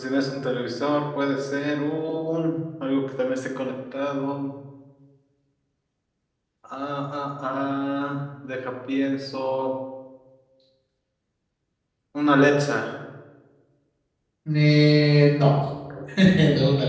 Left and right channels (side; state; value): both; identical; correlation 1.00